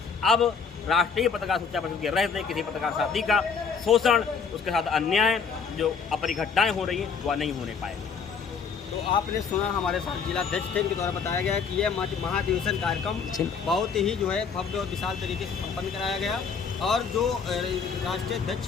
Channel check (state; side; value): quieter; right; 5.9 dB